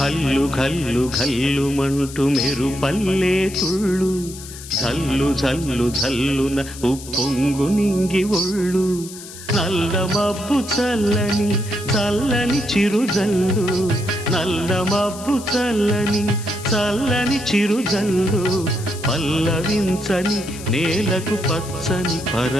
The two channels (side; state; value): left; noise; hiss, 14 dB below the sound